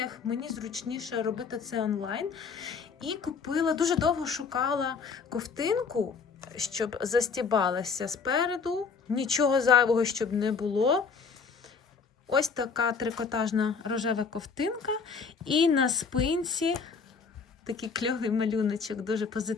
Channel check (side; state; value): right; quieter; 5.4 dB